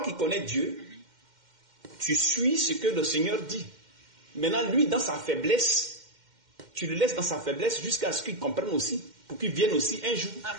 qui connais Dieu, tu suis ce que le Seigneur dit. Maintenant, lui, dans sa faiblesse, tu le laisses dans sa faiblesse jusqu'à ce qu'il comprenne aussi, pour qu'il vienne aussi un jour.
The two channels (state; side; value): late; left; 2.1 ms